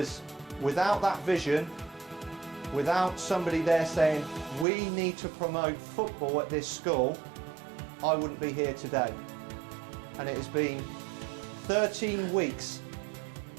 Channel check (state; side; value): drops out; left; at 4.7 s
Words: without that vision, without somebody there saying, we need to promote football at this school, I wouldn't be here today. And it has been 13 weeks